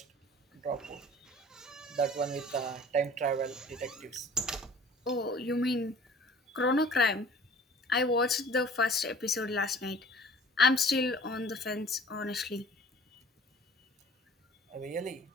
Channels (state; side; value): normal; both; correlation 0.48